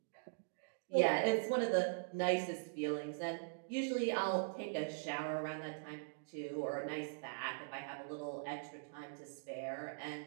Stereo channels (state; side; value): silent; left; digital silence